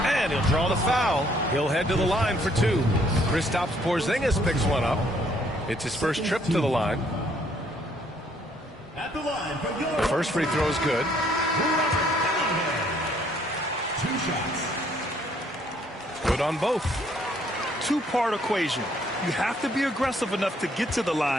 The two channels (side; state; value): both; normal; correlation 0.66